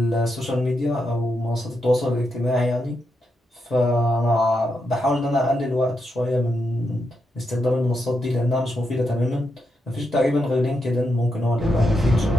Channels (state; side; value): normal; both; correlation 0.84